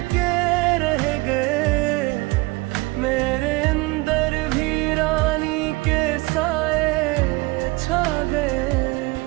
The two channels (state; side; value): quieter; left; 23.4 dB